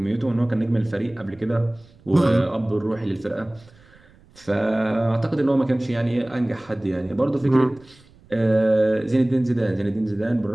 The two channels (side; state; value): right; noise; rumble, 27 dB below the sound